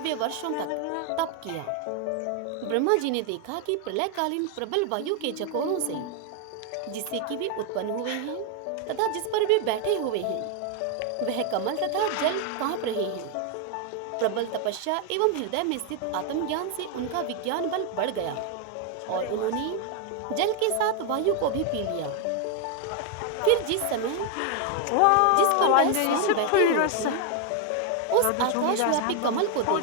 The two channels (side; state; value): both; different; correlation 0.00